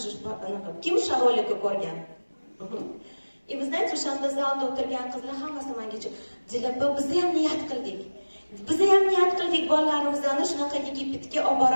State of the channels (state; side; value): inverted; both; correlation -1.00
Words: Kim o'sha rolikni ko'rgan? И вы знаете, o'shanda zalda o'tirgan qizlar hammasi menga Dilaba, biz ham niyat qildik. Biz ham niyat qildik, bolalarimizni shunaqa Yigitga olib